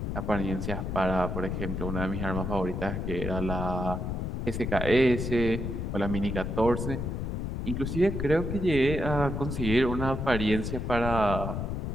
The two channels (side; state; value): left; noise; rumble, 3 dB below the sound